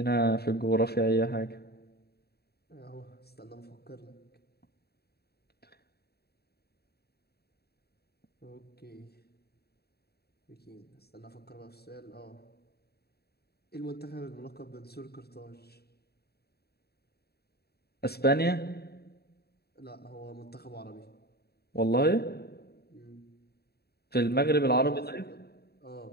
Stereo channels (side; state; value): right; late; 0.47 ms